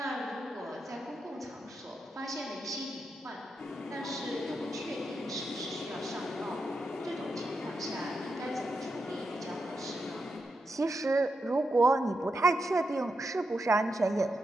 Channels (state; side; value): normal; both; correlation 0.86